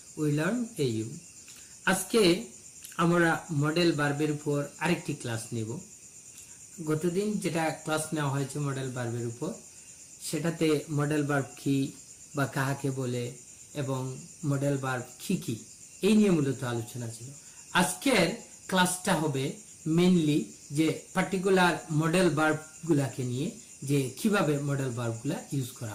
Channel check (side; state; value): both; identical; correlation 1.00